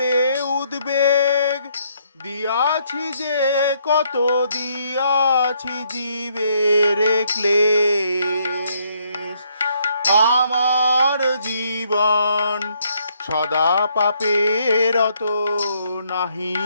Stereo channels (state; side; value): inverted; both; correlation -0.71